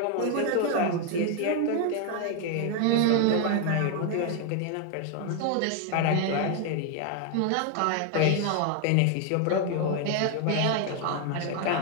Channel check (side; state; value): both; different; correlation 0.01